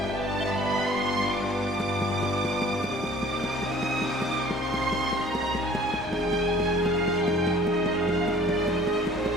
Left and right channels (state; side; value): normal; both; correlation 0.51